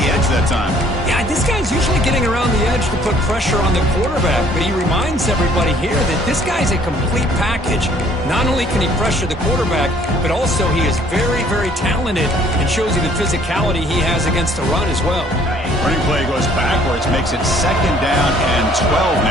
edge that time. Yeah, this guy's usually getting around the edge to put pressure on the quarterback, but he reminds everybody here that this guy's a complete package. Not only can he pressure the quarterback, but also he is very, very talented and shows you the physicality he has against the run as well. Running play goes backwards, makes it 2nd down and 12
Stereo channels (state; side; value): normal; both; correlation 0.59